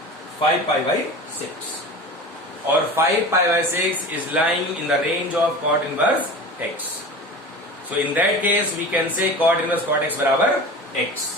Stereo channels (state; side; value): normal; both; correlation 0.34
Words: 5 पाई बाई 6, और 5 pi by 6 is lying in the range of cot inverse x। So in that case we can say cot inverse cot x बराबर x।